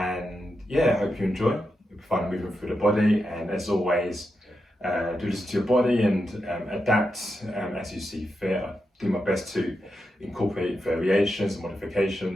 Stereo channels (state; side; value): normal; both; correlation 0.87